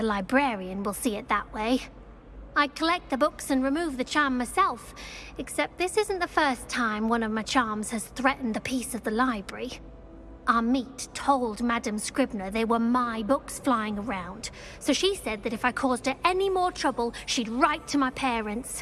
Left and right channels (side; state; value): both; identical; correlation 1.00